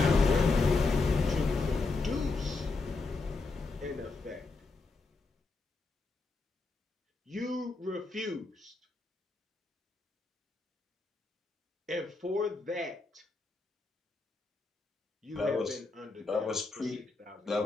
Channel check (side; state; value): right; quieter; 3.7 dB